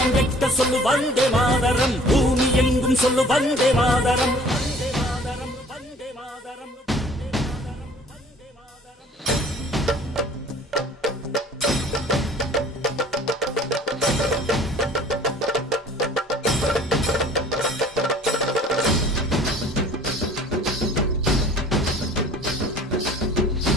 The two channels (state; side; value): normal; both; correlation 0.51